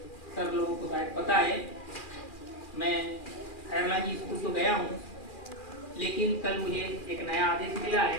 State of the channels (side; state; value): right; late; 2.4 ms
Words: सब लोगों को शायद पता है, मैं खैरलानी स्कूल तो गया हूँ, लेकिन कल मुझे एक नया आदेश मिला